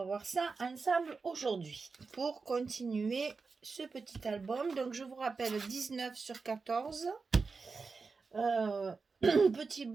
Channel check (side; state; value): left; quieter; 4.5 dB